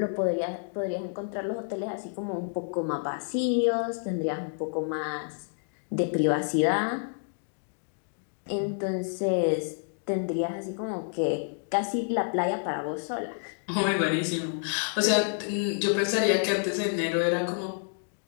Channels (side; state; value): right; silent; digital silence